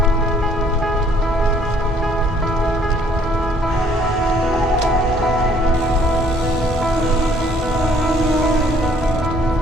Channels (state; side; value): normal; both; correlation 0.61